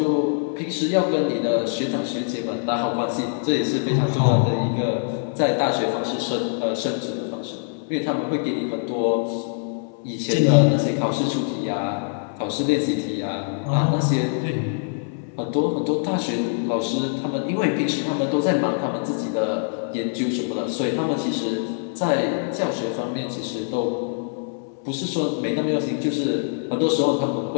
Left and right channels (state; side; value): silent; right; 59 dB below the other